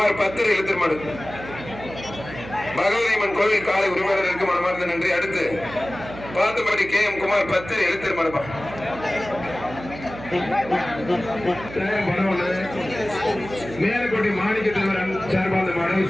10 எழுத்தர் மாடு பகவதியம்மன் கோவில் காலை உரிமையாளருக்கு மனமார்ந்த நன்றி அடுத்து பார்த்தபடி கே குமார் 10 எழுத்தர் மாடுப்பா மேலக்கோட்டை மாணிக்க தலைவர் சார்பாந்த மாடு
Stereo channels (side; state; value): right; noise; hum, 13 dB below the sound